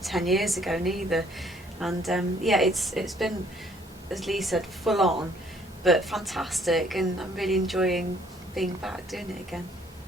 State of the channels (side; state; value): both; normal; correlation 0.62